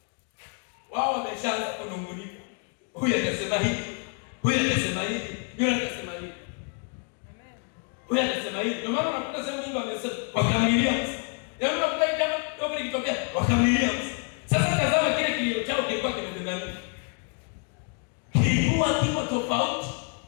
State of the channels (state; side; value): quieter; right; 39.3 dB